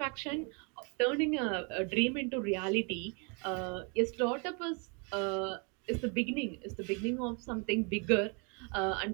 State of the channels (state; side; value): quieter; left; 34.7 dB